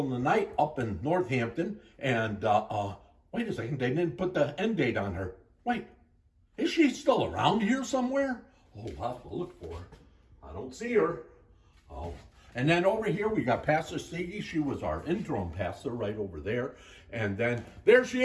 in the Night up in Northampton. And wait a second, they didn't put the end date on her. Wait, is she still around here somewhere? Oh, we'll have to look for her. I don't see her. Oh. And then over here, we got Pastor Stiggy. She was our interim pastor right over there. And then there she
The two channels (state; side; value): identical; both; correlation 1.00